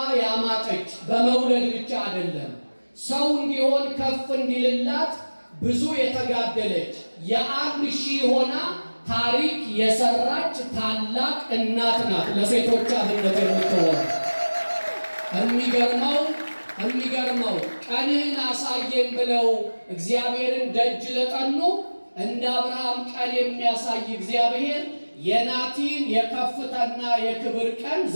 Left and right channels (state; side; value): inverted; both; correlation -1.00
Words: ያማጠች በመውለድ ብቻ አይደለም፣ ሰው እንዲሆን ከፍ እንዲልላት ብዙ የተጋደለች የ1000 ሆና ታሪክ የሰራች ታላቅ እናት ናት። ለሴቶች አብነት የምትሆን የሚገርመው ቀንህን አሳየን ብለው እግዚአብሔርን ደጅ ለጠኑ እንደ አብርሃም ቀን የሚያሳይ እግዚአብሔር የናቲን የከፍታና የክብር ቀን